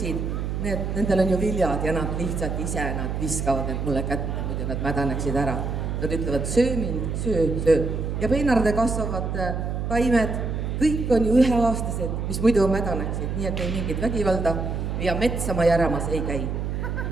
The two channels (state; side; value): noise; right; hum, 2 dB below the sound